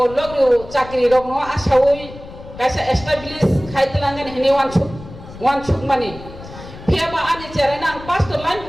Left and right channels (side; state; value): left; noise; rumble, 15 dB below the sound